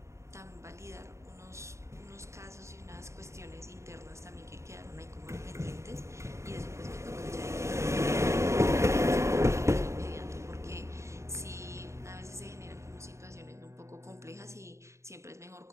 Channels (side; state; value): left; late; 0.14 ms